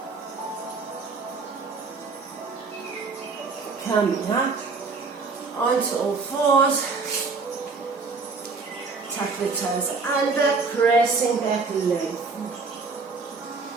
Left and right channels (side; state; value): left; quieter; 4.4 dB